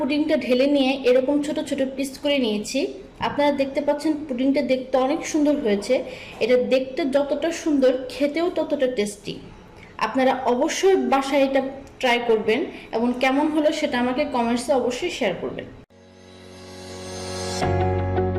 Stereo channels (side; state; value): both; identical; correlation 1.00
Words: ঢেলে নিয়ে এরকম ছোট ছোট পিস করে নিয়েছি। আপনারা দেখতে পাচ্ছেন পুডিংটা দেখতে অনেক সুন্দর হয়েছে। এটা দেখতে যতটা সুন্দর, খেতেও ততটা টেস্টি। আপনারা অবশ্যই বাসায় এটা ট্রাই করবেন এবং কেমন হলো সেটা আমাকে কমেন্টসে অবশ্যই শেয়ার করবেন।